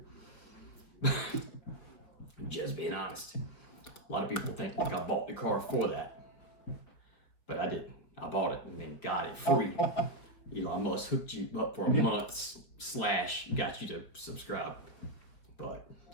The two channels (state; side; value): late; right; 5.1 ms